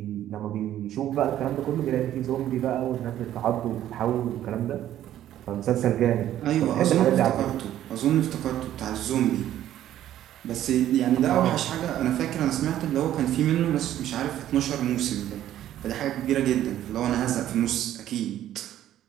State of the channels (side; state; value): left; quieter; 12.1 dB